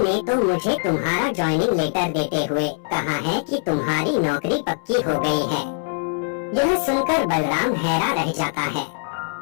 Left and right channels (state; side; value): silent; right; 64 dB below the other